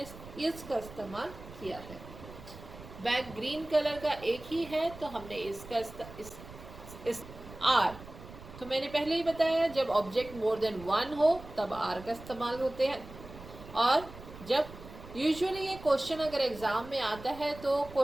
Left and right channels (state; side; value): noise; right; rumble, 16 dB below the sound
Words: इसका इस्तेमाल किया है. बैग ग्रीन कलर का एक ही है तो हमने इसका इस आर. तो मैंने पहले ही बताया जब ऑब्जेक्ट मोर देन वन हो तब आर का इस्तेमाल होते हैं. और जब यूजुअली ये क्वेश्चन अगर एग्ज़ाम में आता है तो